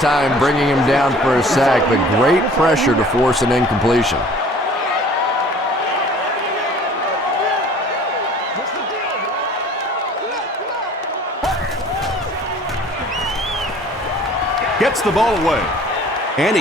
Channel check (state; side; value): normal; both; correlation 0.50